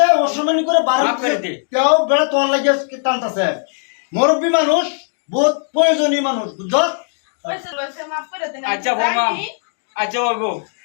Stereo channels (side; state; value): right; silent; digital silence